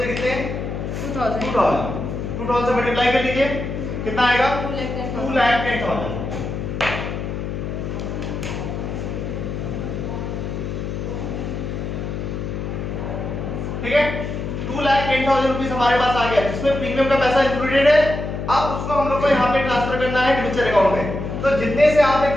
कितने हैं 2000 से मल्टीप्लाई कर लीजिए, कितना आएगा 2,10,000। ठीक है 2,10,000 रुपीस हमारे पास आ गया, जिसमें प्रीमियम का पैसा इंक्लूडेड है। अब उसको हम लोग को यहाँ पे ट्रांसफर करना है डिबेंचर अकाउंट में। तो जितने से आपने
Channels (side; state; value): left; noise; hum, 4 dB below the sound